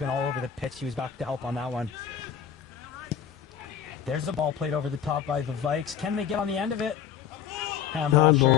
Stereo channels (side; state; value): right; quieter; 8.6 dB